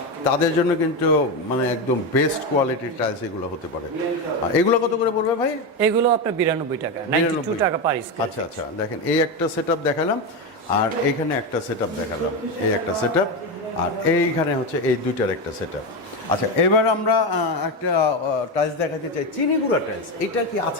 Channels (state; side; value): normal; both; correlation 0.14